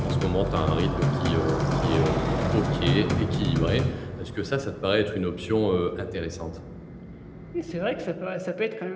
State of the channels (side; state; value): both; identical; correlation 1.00